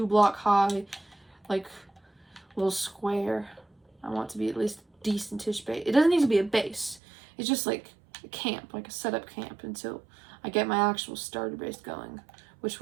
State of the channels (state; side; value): drops out; left; at 7.0 s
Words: high, like, little square. I want it to be at least decentish base. It doesn't need to be a base. It's just like a camp, like a setup camp, until I get my actual starter base going, which